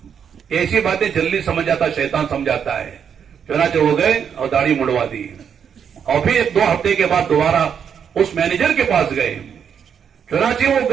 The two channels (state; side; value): quieter; left; 7.7 dB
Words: ایسی باتیں جلدی سمجھ جاتا شیطان سمجھاتا ہے. چنانچہ ہو گئے اور داڑھی مڑوا دی. اور پھر 2 ہفتے کے بعد دوبارہ اس مینیجر کے پاس گئے. چنانچہ وہ